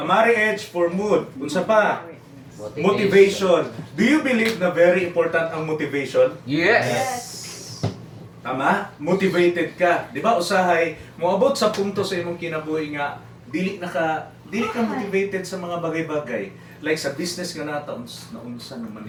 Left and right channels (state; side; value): identical; both; correlation 1.00